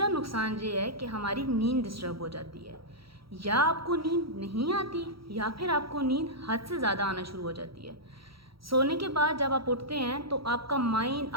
नुकसान ये है कि हमारी नींद डिस्टर्ब हो जाती है। या आपको नींद नहीं आती या फिर आपको नींद हद से ज़्यादा आना शुरू हो जाती है। सोने के बाद जब आप उठते हैं तो आपका माइंड,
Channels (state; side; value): late; left; 0.75 ms